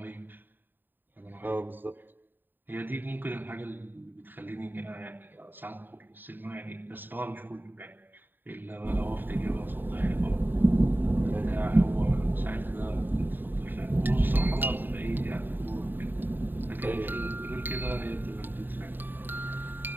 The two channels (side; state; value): left; late; 0.092 ms